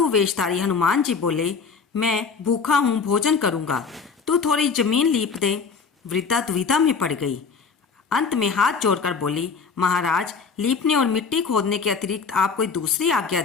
वेशधारी हनुमान जी बोले, मैं भूखा हूँ, भोजन करूँगा, तू थोड़ी जमीन लीप दे। वृद्धा दुविधा में पड़ गई। अंत में हाथ जोड़कर बोली, महाराज, लीपने और मिट्टी खोदने के अतिरिक्त आप कोई दूसरी आज्ञा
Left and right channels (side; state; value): right; quieter; 5.3 dB